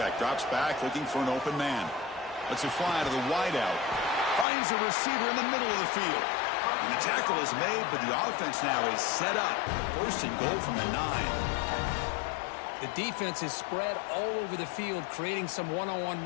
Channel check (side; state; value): right; drops out; at 4.5 s